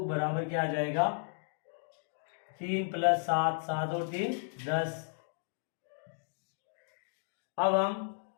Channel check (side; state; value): right; silent; digital silence